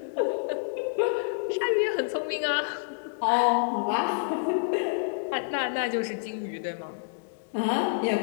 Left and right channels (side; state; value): right; silent; digital silence